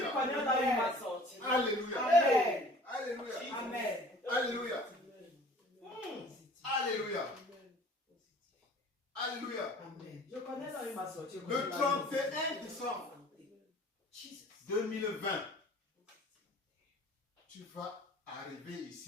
Pendant là où il m'a sorti. Alléluia. Amen. Alléluia. Amen. Alléluia. Alléluia. Alléluia. Amen. Je connais là où il m'a sorti. Le 31 décembre 2020, tu vas arriver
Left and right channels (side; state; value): both; normal; correlation 0.48